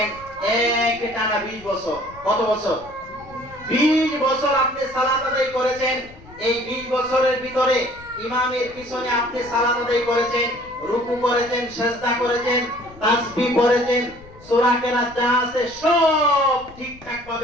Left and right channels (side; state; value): left; noise; rumble, 21 dB below the sound